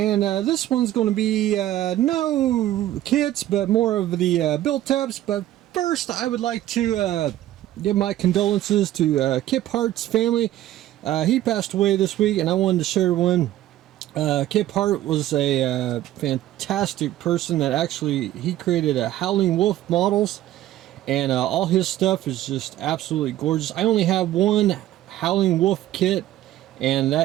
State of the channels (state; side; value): quieter; left; 13.8 dB